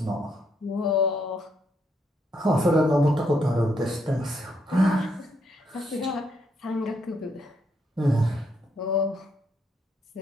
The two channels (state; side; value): normal; both; correlation 0.75